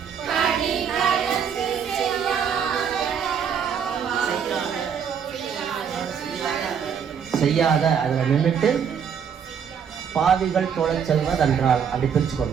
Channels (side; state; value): left; quieter; 7.4 dB